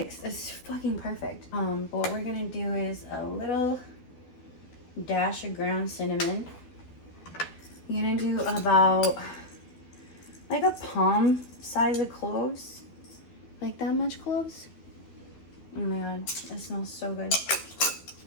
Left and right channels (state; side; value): late; right; 12 ms